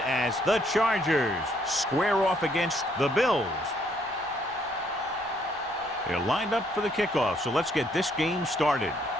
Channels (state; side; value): noise; left; rumble, 29 dB below the sound